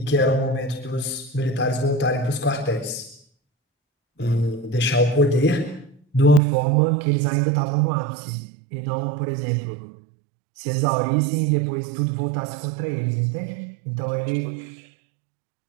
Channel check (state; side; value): drops out; left; at 6.4 s